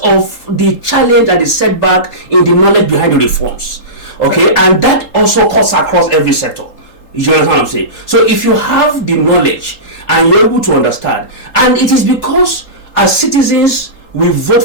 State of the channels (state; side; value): late; right; 3.8 ms